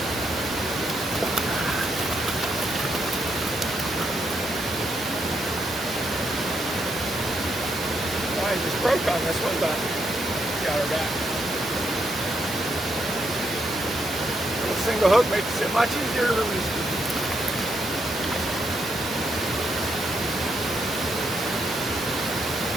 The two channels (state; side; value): normal; both; correlation 0.78